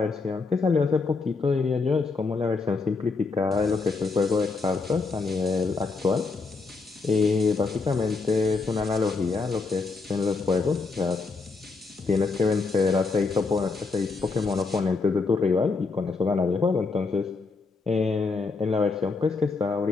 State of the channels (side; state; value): right; quieter; 4.2 dB